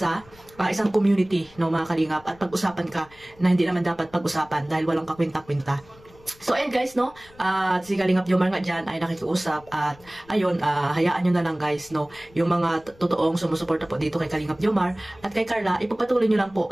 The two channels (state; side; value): noise; left; rumble, 26 dB below the sound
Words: isang community, no, mga Kalingap, at pag-usapan ka na hindi naman dapat pag-usapan dahil walang kakwenta-kwenta. So, ayan guys, no, si Kalingap Jomar nga dyan ay nakikiusap at ayun, hayaan nyo na lang guys, no, yung mga totoong sumusuporta po dito kay Kalingap Jomar at kay Carla, ipagpatuloy nyo lang po